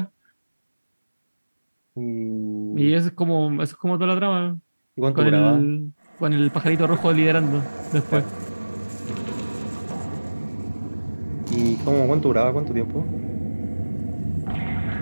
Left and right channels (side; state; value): both; inverted; correlation -1.00